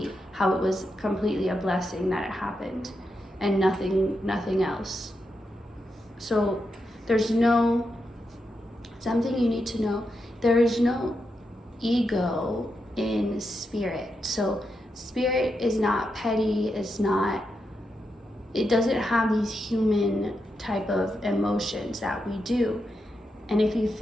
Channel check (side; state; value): both; normal; correlation 0.85